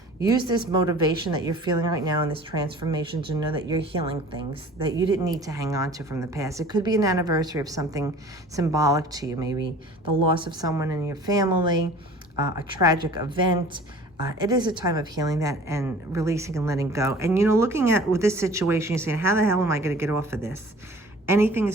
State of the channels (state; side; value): normal; both; correlation 0.46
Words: Use this motivation that you're feeling right now in this transformation to know that you're healing things that you didn't need to hang on to from the past. It could be an anniversary of something symbolic to you, maybe the loss of someone in your family, a tragic event. It is a time of healing that and releasing and letting go. And, you know, looking at with this situation, you're saying, how the hell am I going to get off of this? Anything